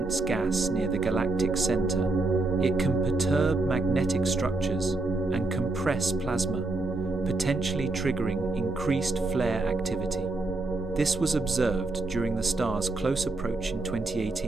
gas near the galactic center, it can perturb magnetic structures and compress plasma, potentially triggering increased flare activity. This was observed during the star's close approach in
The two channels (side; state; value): left; quieter; 3.2 dB